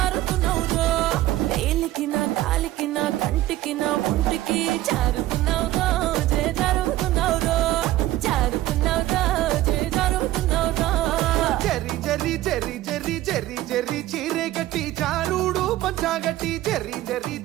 వేలికిన కాలికిన కంటికిన ఒంటికి జారుతున్నౌరో చే జారుతున్నౌరో జారుతున్నౌరో చే జారుతున్నౌరో జరి జరి జరి జరి జరి జరి చీరే గట్టి జారుడు పంచాగట్టి జరి జరి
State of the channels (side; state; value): left; quieter; 15.3 dB